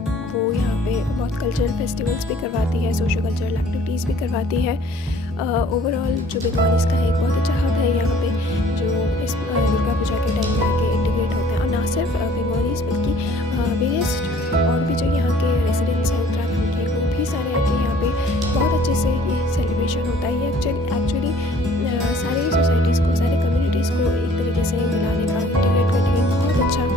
वो यहाँ पे बहुत कल्चरल फेस्टिवल्स भी करवाती है, सोशल कल्चरल एक्टिविटीज़ भी करवाती है। ओवरऑल जो बंगालीज़ का एक बहुत अच्छा हब है यहाँ पे, जो इस दुर्गा पूजा के टाइम में आके इंटीग्रेट होते हैं। और ना सिर्फ बंगालीज़ बल्कि वेरियस और भी जो यहाँ के रेसिडेंट्स हैं उत्तराखंड के, वो भी सारे आके यहाँ पे बहुत अच्छे से ये सेलिब्रेशन होता है। ये एक्चुअली सारी सोसाइटीज़ को, सारे कम्युनिटीज़ को एक तरीके से मिलाने का, इंटीग्रेट करने का बहुत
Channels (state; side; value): normal; both; correlation 0.55